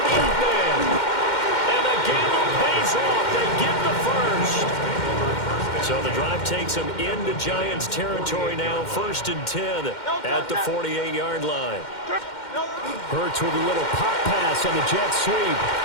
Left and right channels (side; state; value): right; late; 2.1 ms